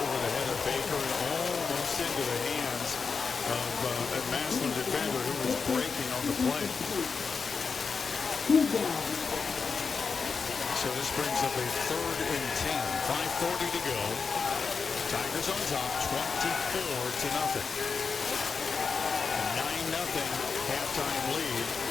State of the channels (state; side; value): quieter; right; 5.2 dB